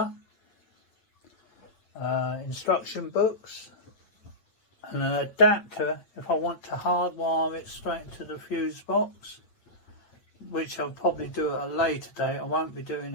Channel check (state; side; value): late; right; 9.0 ms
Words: instruction books, and an adapter if I want to hardwire it straight to the fuse box, which I'll probably do at a later date. I won't be doing